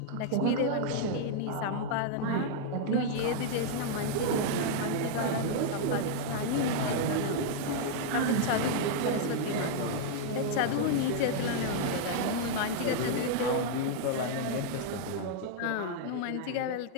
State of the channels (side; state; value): both; different; correlation -0.01